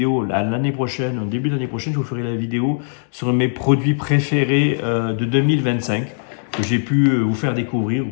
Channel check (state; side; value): silent; right; digital silence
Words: l'année prochaine, au début de l'année prochaine, je vous ferai la vidéo sur mes produits préférés de 2025, que j'ai pu vous faire découvrir ou